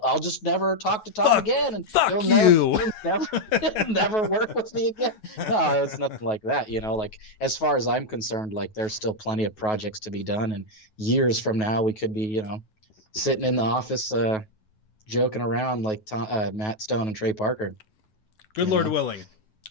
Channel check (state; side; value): late; right; 9.3 ms